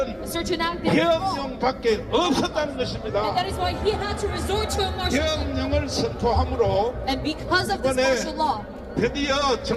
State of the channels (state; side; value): identical; both; correlation 1.00